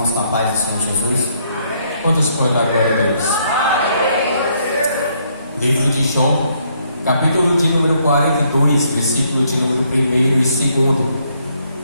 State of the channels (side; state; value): both; inverted; correlation -0.71